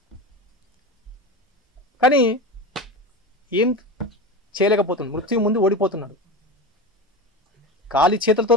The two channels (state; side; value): normal; both; correlation 0.25